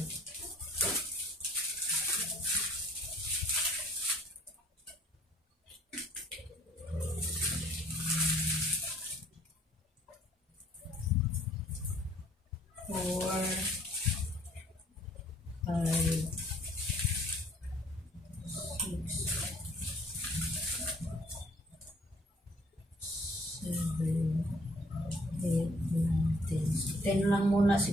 Ten lang muna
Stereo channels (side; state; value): both; normal; correlation 0.60